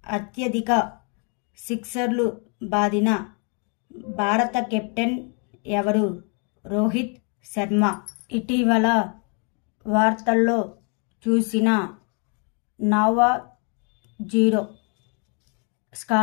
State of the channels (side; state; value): right; quieter; 37.6 dB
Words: అత్యధిక సిక్సర్లు బాదిన భారత కెప్టెన్ ఎవరు? రోహిత్ శర్మ. ఇటీవల వార్తల్లో చూసిన నోవా జీరో